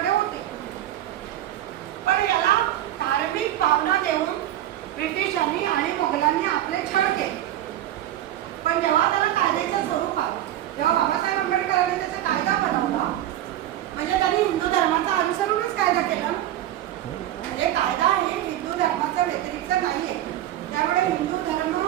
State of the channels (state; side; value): quieter; left; 13.0 dB